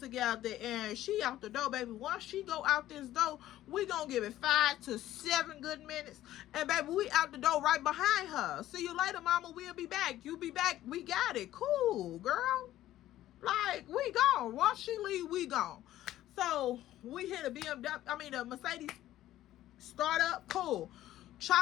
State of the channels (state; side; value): quieter; right; 13.8 dB